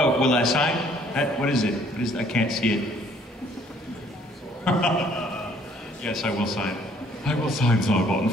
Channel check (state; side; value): normal; both; correlation 0.61